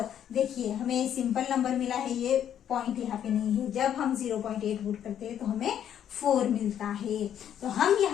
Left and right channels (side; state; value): right; quieter; 9.8 dB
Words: देखिए हमें सिंपल नंबर मिला है, ये पॉइंट यहाँ पे नहीं है। जब हम 0.8 पुट करते हैं तो हमें 4 मिलता है। तो हम